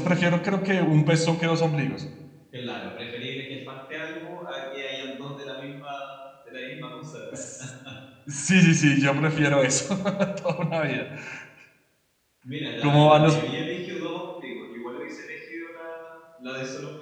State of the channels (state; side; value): identical; both; correlation 1.00